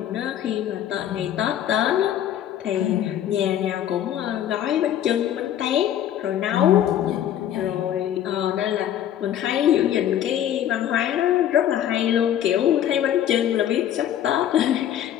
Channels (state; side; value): quieter; right; 10.8 dB